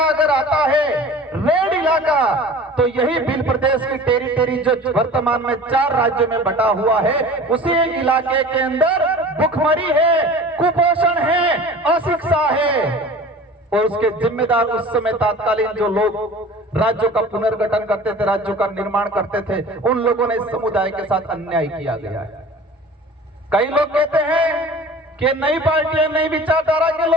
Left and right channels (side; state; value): both; normal; correlation 0.41